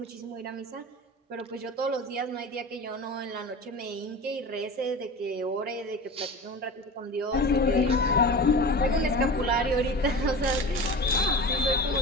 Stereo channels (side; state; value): both; normal; correlation 0.32